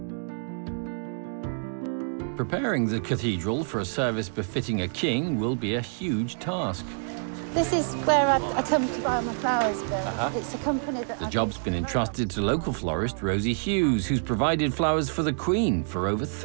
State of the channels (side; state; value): left; silent; digital silence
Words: Preparing the cathedral for a service befitting a king will be a huge task. This is where I come to buy my flowers, Bill. It's a company that... The job's been entrusted to local florist Rosie Hughes, who's provided flowers for the Queen for over